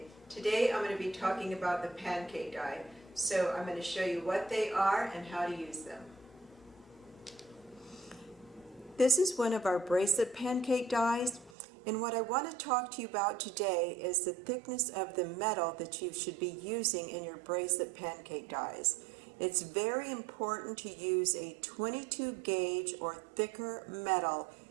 Today I'm going to be talking about the pancake die. So I'm going to show you what they are and how to use them. This is one of our bracelet pancake dies, and what I want to talk to you about today is the thickness of the metal that you should be using in your bracelet pancake dies. It's very important to use a 22 gauge or thicker metal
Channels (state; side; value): drops out; left; at 11.6 s